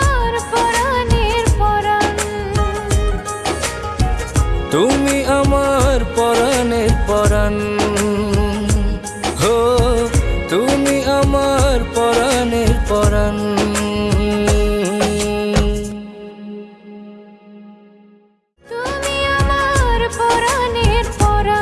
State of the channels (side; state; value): both; identical; correlation 1.00